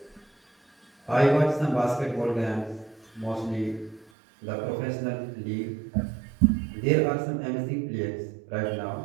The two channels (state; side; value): drops out; left; at 4.1 s